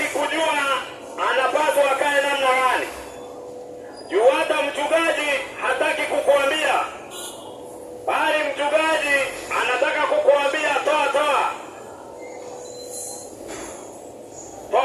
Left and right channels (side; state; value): both; identical; correlation 1.00